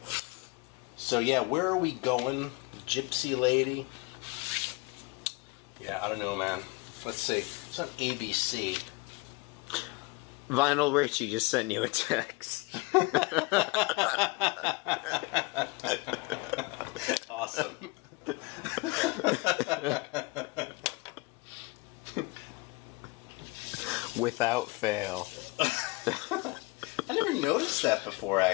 So yeah, where are we going, Gypsy Lady? Yeah, I don't know, man. Let's see. It's on ABC. Vinyl Richie just sent you a text. Awesome. Without fail. I never noticed that before,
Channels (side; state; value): right; quieter; 25.3 dB